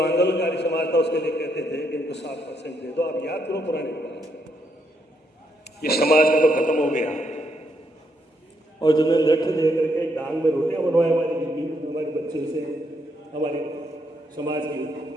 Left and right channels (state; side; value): normal; both; correlation 0.76